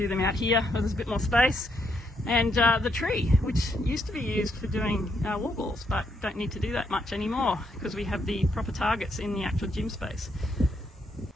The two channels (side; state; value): both; normal; correlation 0.76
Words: them out here where there's a bit more space. And the tree, which used to be used for doing wall balls, but don't need to do that much anymore because we have the proper targets in the actual gym space.